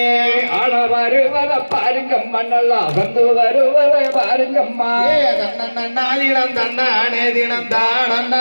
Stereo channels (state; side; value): inverted; both; correlation -1.00